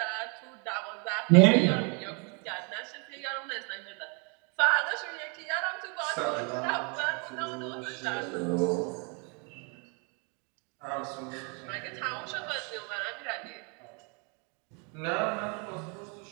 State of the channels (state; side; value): quieter; left; 35.1 dB